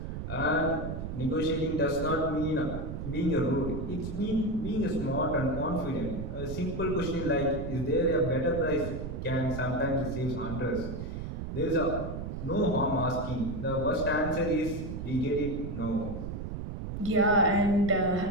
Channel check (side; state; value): right; noise; rumble, 6 dB below the sound